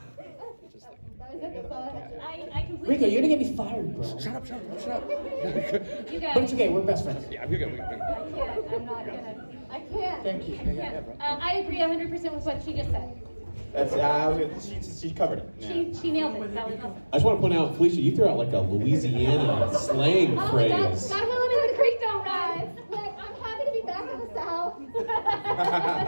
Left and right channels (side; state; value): both; inverted; correlation -1.00